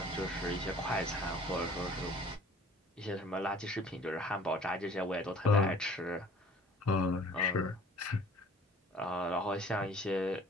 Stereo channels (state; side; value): normal; both; correlation 0.51